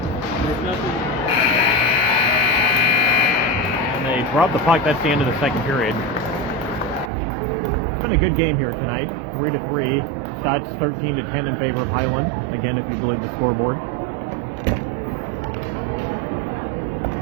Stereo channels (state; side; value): drops out; left; at 7.1 s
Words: And they drop the puck. That's the end of the second period. It's been a good game here tonight. 3-3. Shots 13-10 in favor of Highland. Again, if you believe the scoreboard.